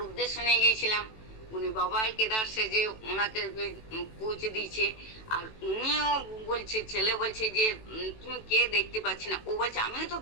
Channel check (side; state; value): right; late; 18 ms